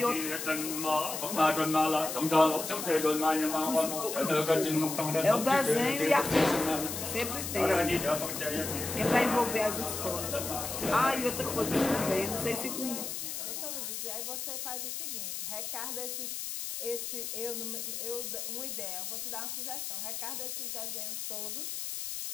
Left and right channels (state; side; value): noise; left; hiss, 5 dB below the sound